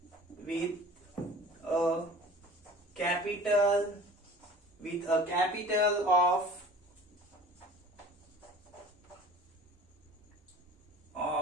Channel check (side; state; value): both; normal; correlation 0.43